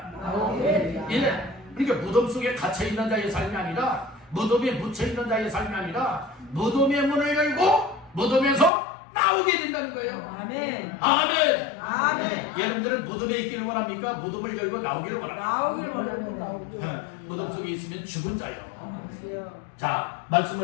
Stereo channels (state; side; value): drops out; right; at 8.7 s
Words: 예, 그러니까 무덤 속에 갇혀 있는 자의 삶이 아니라, 무덤에 묻혀 있는 자의 삶이 아니라, 무덤의 문을 열고 무덤에서 나오게 된다는 거예요. 아멘. 아멘. 아멘. 여러분들은 무덤에 있기를 원합니까? 무덤을 열고 나오기를 원합니까? 나오길 원합니다. 무덤 속에 있으면 죽은 자요. 자,